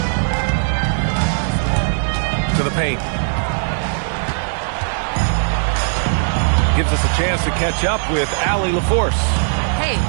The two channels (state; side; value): silent; left; digital silence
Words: To the paint. Gives us a chance to catch up with Allie LaForce. Hey,